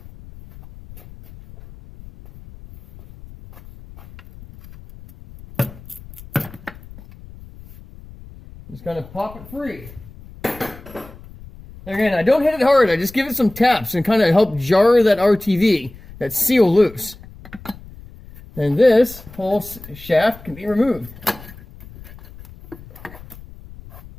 Just kind of pop it free. Again, I don't hit it hard. I just give it some taps and kind of help jar that RTV, that seal loose. And this whole shaft can be removed.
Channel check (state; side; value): noise; left; rumble, 19 dB below the sound